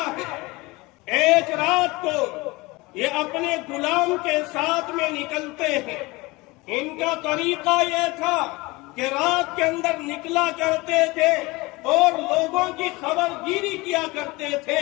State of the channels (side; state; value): right; quieter; 23.0 dB